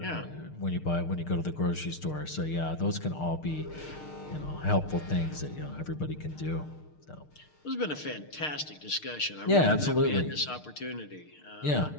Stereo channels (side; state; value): right; late; 6.6 ms